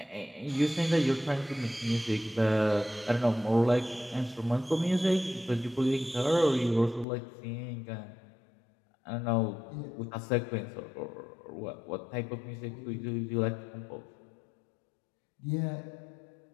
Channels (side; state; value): right; drops out; at 7.1 s